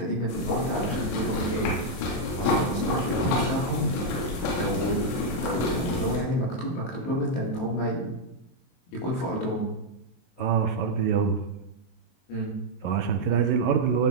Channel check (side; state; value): right; late; 23 ms